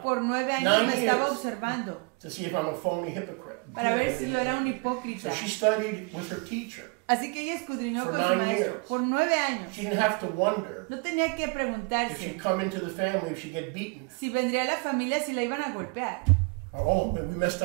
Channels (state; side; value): quieter; left; 32.2 dB